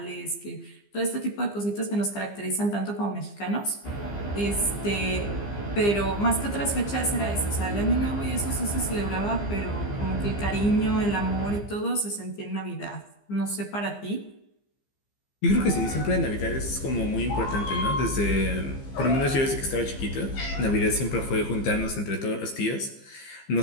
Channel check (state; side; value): late; right; 15 ms